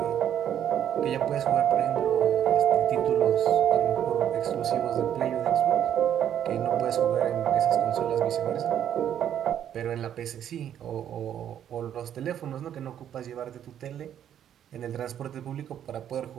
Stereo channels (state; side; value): quieter; left; 10.0 dB